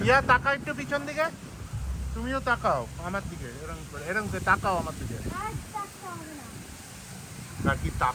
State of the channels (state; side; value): identical; both; correlation 1.00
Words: ইয়া তাকাও একটু পিছন দিকে, তুমিও তাকাও আমার দিকে, এরকম করে এরকম করে তাকাও আমার দিকে, নাকি